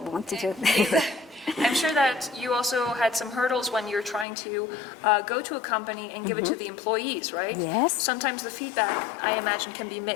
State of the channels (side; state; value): right; drops out; at 4.2 s